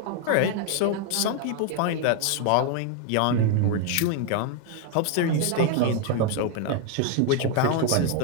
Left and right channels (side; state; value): both; different; correlation 0.01